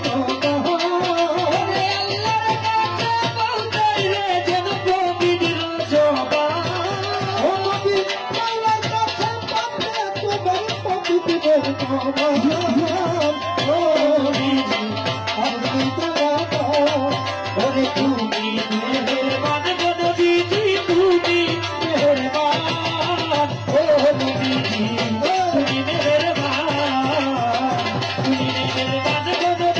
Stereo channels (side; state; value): both; identical; correlation 1.00